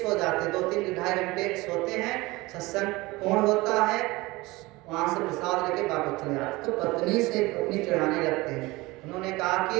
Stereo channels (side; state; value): left; quieter; 21.5 dB